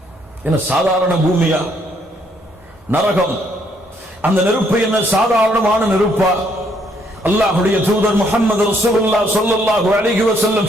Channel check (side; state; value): both; normal; correlation 0.69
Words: என்ன சாதாரண பூமியா? நரகம் அந்த நெருப்பு என்ன சாதாரணமான நெருப்பா? அல்லாஹ்வுடைய தூதர் முஹம்மது ரசூலுல்லாஹ் ஸல்லல்லாஹு அலைஹி வஸல்லம்